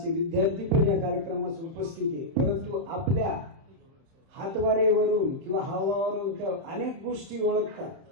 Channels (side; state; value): left; late; 30 ms